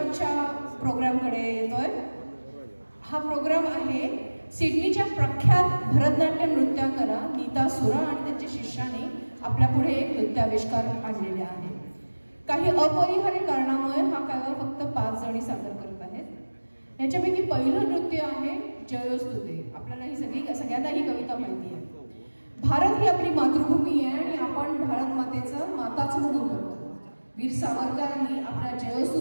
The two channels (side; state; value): both; inverted; correlation -1.00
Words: प्रोग्रामकडे येतोय. हा प्रोग्राम आहे सिडनीच्या प्रख्यात भरतनाट्य नृत्यांगना नीता सुरा आणि त्यांच्या शिष्याने आपल्या पुढे एक नृत्याविष्कार आणलेले आहे. काही अपरिहार्य कारणामुळे हा काव्य फक्त 5 जणी सादर करत आहेत. याच्यापैकी पहिलं नृत्य आहे जयोस्तुते. आपल्याला ही सगळ्यांना ही कविता माहिती आहे. भारत ही आपली मातृभूमी आहे आणि आपण भारत मातेचं माताच म्हणून करतो. वीर सावरकरांनी आपल्या